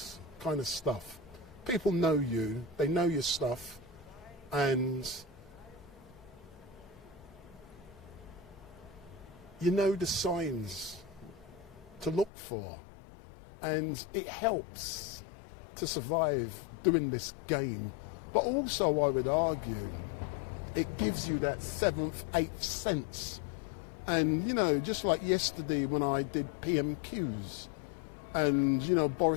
kind of stuff, people know you, they know your stuff, and you know the signs to look for, and it helps to survive doing this game. But also, I would argue, it gives you that seventh, eighth sense. And, you know, just like yesterday when I did PMQs, and, you know,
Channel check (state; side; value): drops out; right; at 12.3 s